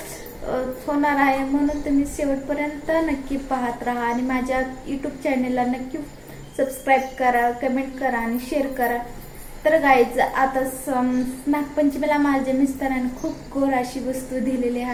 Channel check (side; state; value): both; identical; correlation 1.00